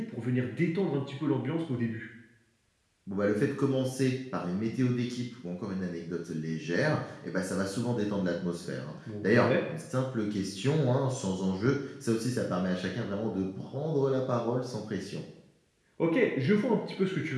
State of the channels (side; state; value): both; identical; correlation 1.00